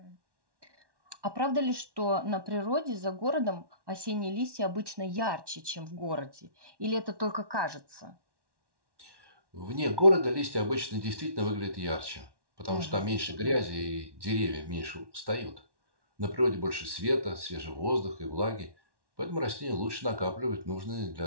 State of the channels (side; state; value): left; late; 1.1 ms